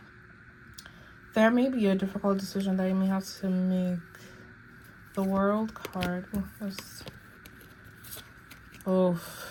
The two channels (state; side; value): identical; both; correlation 1.00